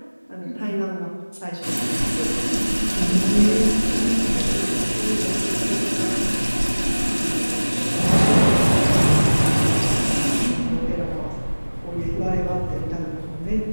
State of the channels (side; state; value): both; inverted; correlation -1.00